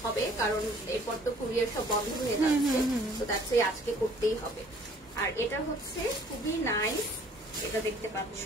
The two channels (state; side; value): normal; both; correlation 0.56